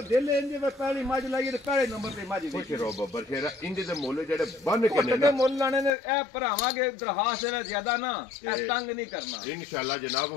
ਦਿਲ ਇੰਜ ਵੇ ਪਹਿਲੀ ਮੱਝ ਲਾਈ ਤੇ ਪਹਿਲੇ ਨੰਬਰ ਤੇ ਮੱਝ ਖੁਸ਼ ਰਹੋ ਬੱਬਰ ਸ਼ੇਰਾ। ਇੰਜ ਦੇ ਮੁੱਲ ਜਿਹੜੇ ਬੰਨ ਕੇ ਨੇ ਨਾ ਮੁੱਲ ਲਾਣੇ ਨੇ ਇਹ ਭਰਾਵਾਂਗੇ ਦਰਖਾਸਤ ਇਹਦਾ ਜ਼ਿਆਦਾ ਨਾ ਇਹ ਤੰਗ ਨਹੀਂ ਕਰਨਾ ਇਨਸ਼ਾਅੱਲਾ ਜਨਾਬ।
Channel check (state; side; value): drops out; right; at 5.9 s